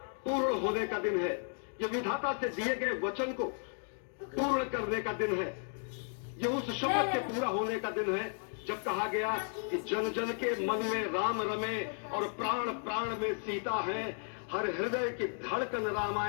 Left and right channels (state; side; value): silent; right; 55 dB below the other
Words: पूर्ण होने का दिन है, ये विधाता से दिए गए वचन को पूर्ण करने का दिन है, ये उस शपथ के पूरा होने का दिन है जब कहा गया कि जन जन के मन में राम रमे और प्राण प्राण में सीता है, हर हृदय की धड़कन